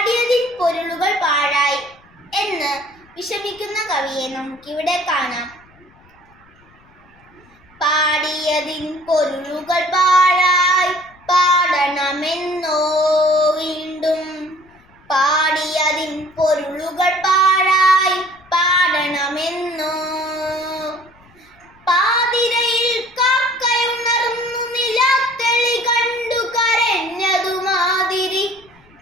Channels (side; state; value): left; noise; rumble, 29 dB below the sound